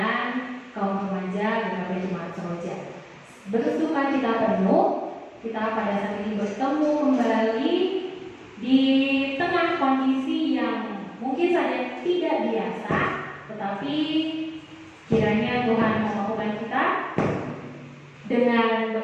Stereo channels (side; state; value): both; identical; correlation 1.00